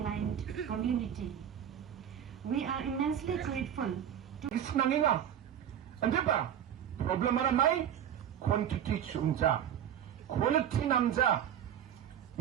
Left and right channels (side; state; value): left; quieter; 9.7 dB